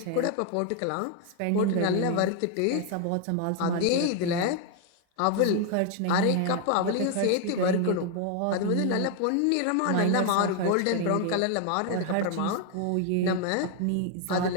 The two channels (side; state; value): both; different; correlation 0.00